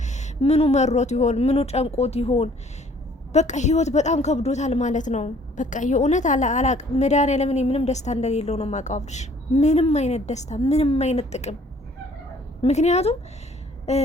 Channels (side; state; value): both; normal; correlation 0.58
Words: ምኑ መሮት ይሆን? ምኑ ጨንቆት ይሆን? በቃ ህይወት በጣም ከብዶታል ማለት ነው። በቃ የእውነት አላቅ መድኃኒዓለም ምንም ደስታ እንደሌለው ነው የማውቀው አብርሽ። ምንም አይነት ደስታ፣ ምንም አይነት ጥቅም። ምክንያቱም